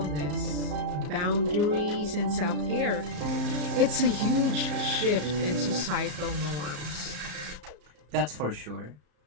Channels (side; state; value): left; late; 34 ms